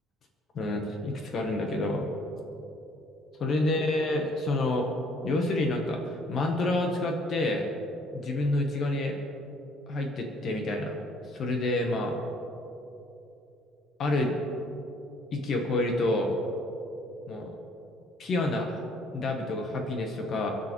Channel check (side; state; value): both; normal; correlation 0.61